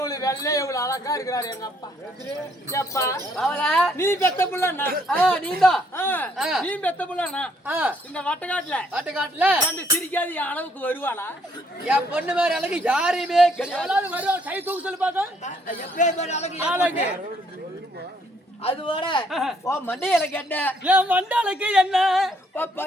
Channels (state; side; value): normal; both; correlation 0.68